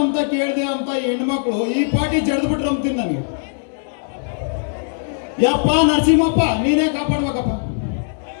ಅಂತ ಕೇಳಿದೆ ಅಂತ ಹೆಣ್ಮಕ್ಳು ಈ ಪಾಟಿ ಜಡ್ದು ಬಿಟ್ರು ಅಂತೀನಿ ನನಗೆ. ಯಪ್ಪ ನರಸಿಂಹಪ್ಪ ನೀನೇ ಕಾಪಾಡ್ಬೇಕಪ್ಪ.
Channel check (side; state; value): right; silent; digital silence